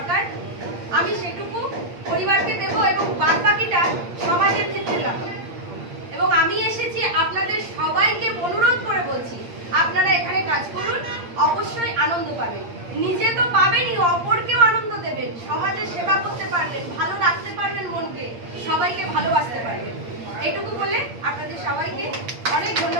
আমি সেটুকু পরিবারকে দেব এবং বাদ বাকিটা সমাজের ক্ষেত্রে লাগাবো। এবং আমি এসেছি আপনাদের সবাইকে অনুরোধ করে বলছি, আপনারা এখানে কাজ করুন, অবশ্যই আনন্দ পাবেন। নিজে তো পাবেনই, অপরকেও আনন্দ দেবেন, সমাজের সেবা করতে পারবেন, ভালো রাখতে পারবেন মনকে, সবাইকে ভালোবাসতে পারবেন। এইটুকু বলে আপনাদের সবাইকে অনেক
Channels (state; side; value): late; left; 8.7 ms